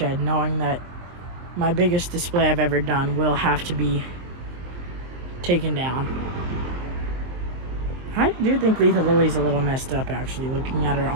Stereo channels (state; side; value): late; left; 23 ms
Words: knowing that my biggest display I've ever done will have to be taken down. I do think Lethal Lily's a little messed up, actually, looking at her